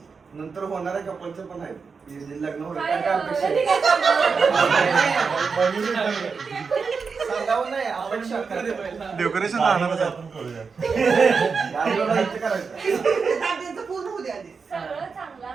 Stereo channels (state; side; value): quieter; left; 5.2 dB